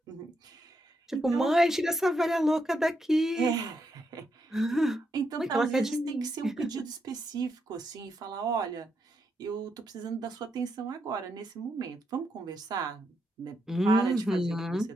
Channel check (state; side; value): normal; both; correlation 0.81